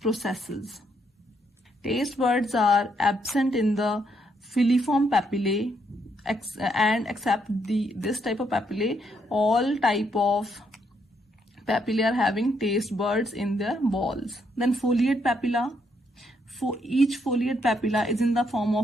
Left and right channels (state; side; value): normal; both; correlation 0.75